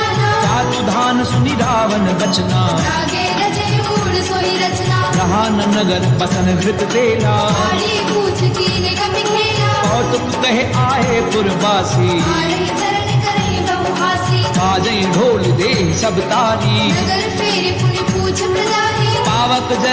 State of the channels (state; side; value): identical; both; correlation 1.00